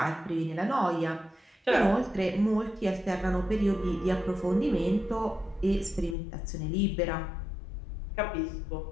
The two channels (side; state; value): right; drops out; at 6.2 s